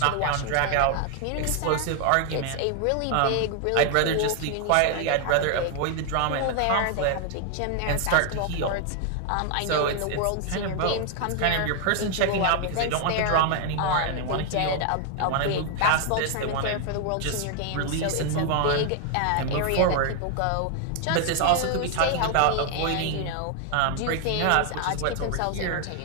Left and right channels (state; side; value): different; both; correlation 0.00